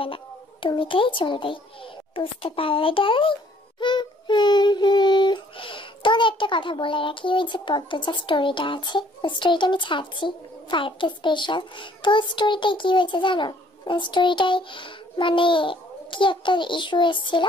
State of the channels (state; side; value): normal; both; correlation 0.60